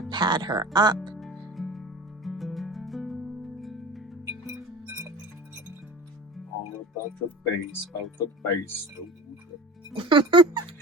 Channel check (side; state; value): both; normal; correlation 0.35